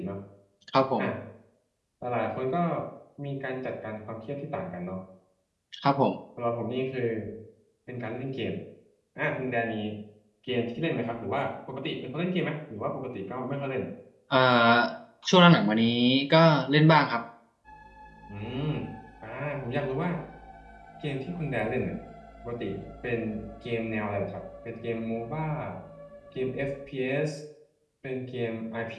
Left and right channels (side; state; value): both; identical; correlation 1.00